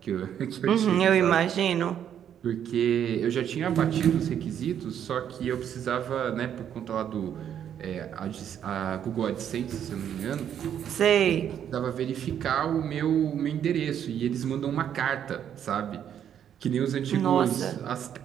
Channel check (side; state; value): left; quieter; 9.4 dB